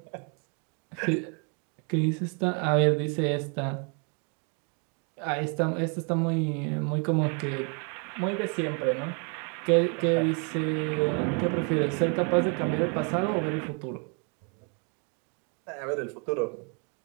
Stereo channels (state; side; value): quieter; left; 37.7 dB